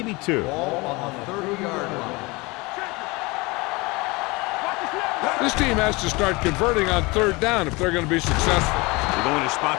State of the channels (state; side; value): quieter; right; 24.5 dB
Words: 2. Ball on the 30-yard line. This team has to start converting on third down if they're going to be successful. They're going to